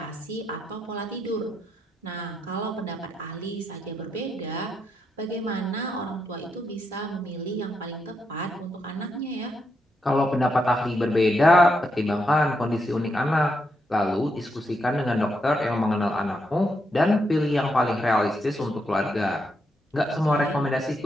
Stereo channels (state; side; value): normal; both; correlation 0.81